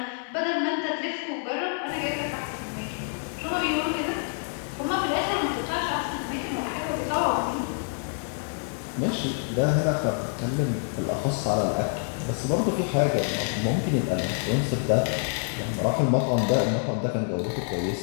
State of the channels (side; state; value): right; silent; 60 dB below the other